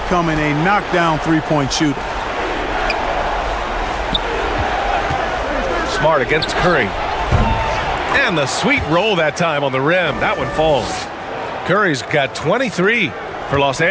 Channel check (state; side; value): identical; both; correlation 1.00